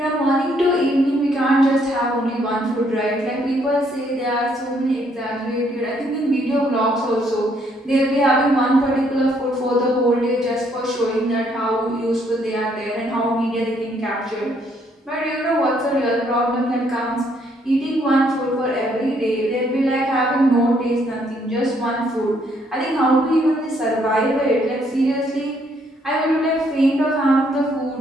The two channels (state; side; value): normal; both; correlation 0.69